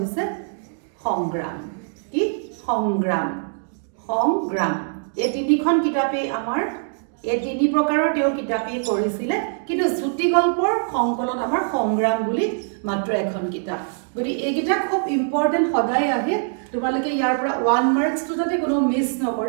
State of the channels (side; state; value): left; silent; digital silence